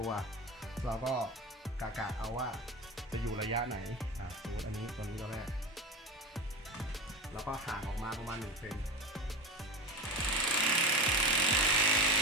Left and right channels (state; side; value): normal; both; correlation 0.25